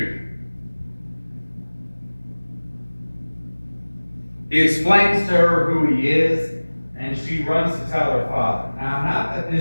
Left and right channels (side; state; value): both; inverted; correlation -1.00